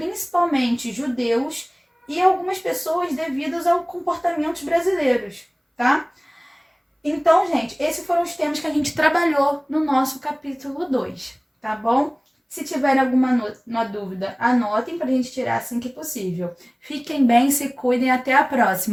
judeus e algumas pessoas devido aos comportamentos brasileiros, tá? Então, gente, esses foram os temas que a gente trabalhou no nosso capítulo 2, tá bom? Se tiverem alguma dúvida, anotem pra gente tirar assim que possível. Fiquem bem, se cuidem, até a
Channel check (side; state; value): both; identical; correlation 1.00